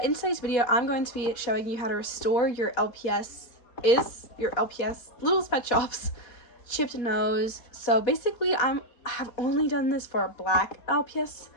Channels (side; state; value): right; late; 4.1 ms